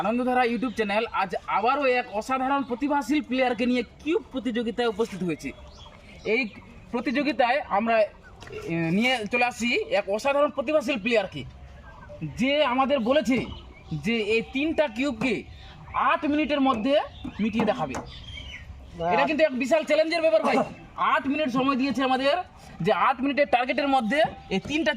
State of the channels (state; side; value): identical; both; correlation 1.00